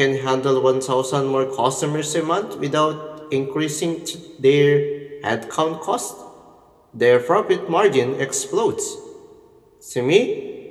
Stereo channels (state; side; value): identical; both; correlation 1.00